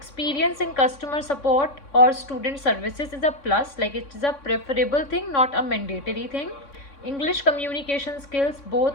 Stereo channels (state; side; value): late; right; 3.6 ms